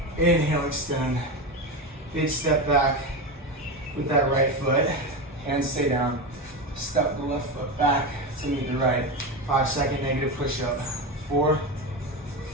Inhale, extend. Big step back with that right foot. Hands stay down. Step the left foot back to meet the right. 5-second negative push-up. 4,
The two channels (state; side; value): normal; both; correlation 0.19